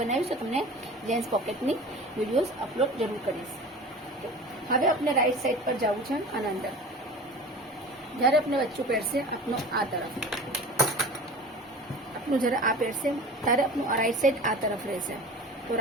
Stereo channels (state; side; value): normal; both; correlation 0.38